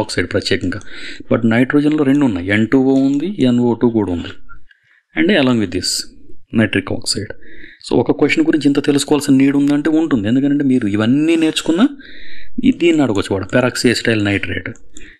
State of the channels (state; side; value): identical; both; correlation 1.00